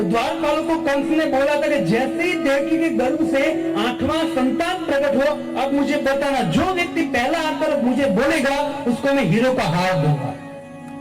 द्वारपालों को कंस ने बोला था कि जैसे ही देवकी के गर्भ से 8वां संतान प्रकट हो, अब मुझे बताना, जो व्यक्ति पहला आकर मुझे बोलेगा उसको मैं हीरो का हार दूंगा।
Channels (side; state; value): both; identical; correlation 1.00